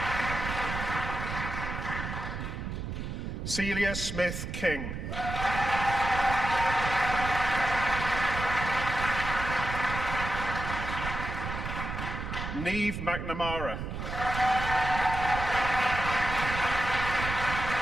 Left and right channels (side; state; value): right; noise; rumble, 5 dB below the sound